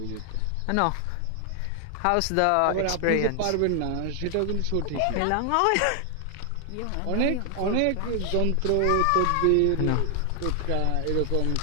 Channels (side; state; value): both; different; correlation 0.00